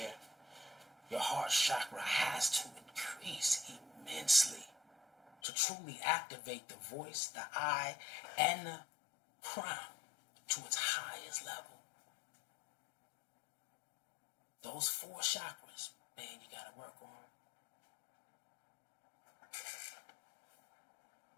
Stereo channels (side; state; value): right; drops out; at 5.4 s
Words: your heart chakra has to increase immensely to truly activate the voice, the eye, and the crown to its highest level. Those 4 chakras, man, you got to work on.